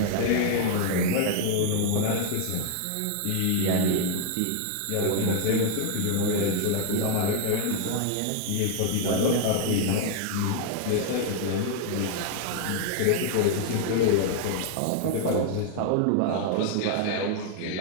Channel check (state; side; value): different; both; correlation 0.00